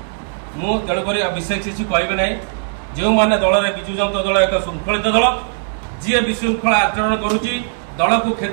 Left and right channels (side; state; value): left; silent; digital silence